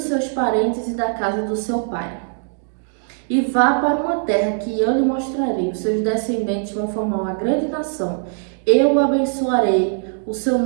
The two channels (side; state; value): left; silent; digital silence